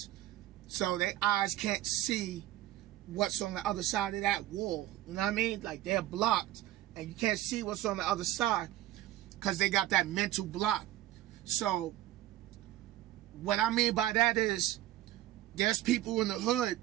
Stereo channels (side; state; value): left; quieter; 14.6 dB